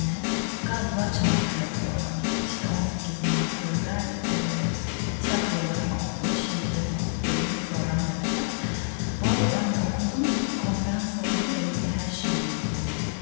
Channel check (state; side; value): silent; right; 60 dB below the other